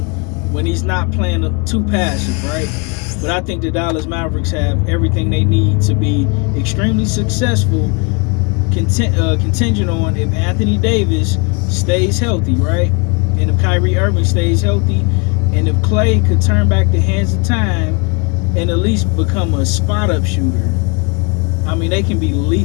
when he's not playing too passive, right? But I think the Dallas Mavericks have everything they need to be extremely successful, contingent on if Anthony Davis stays healthy, right? And if Kyrie Irving stays healthy, and if Klay could turn back the hands of time and at least become a spot-up shooter, I mean, they can be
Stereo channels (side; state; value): right; quieter; 31.5 dB